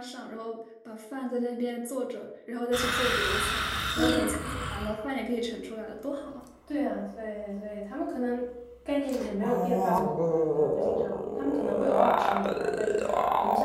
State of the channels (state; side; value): identical; both; correlation 1.00